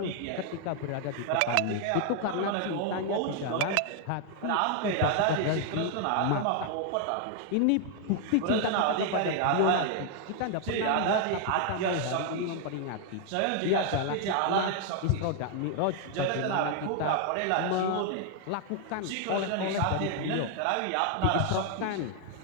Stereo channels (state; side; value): different; both; correlation 0.00